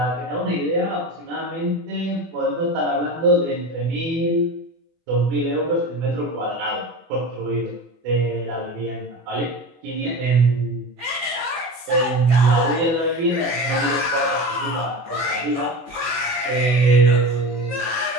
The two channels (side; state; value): left; late; 24 ms